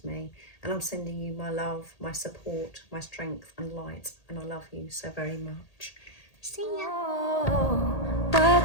me. And I'm sending you my love, my support, my strength and light. And I love you so very much. See ya. Oh,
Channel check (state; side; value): late; right; 1.8 ms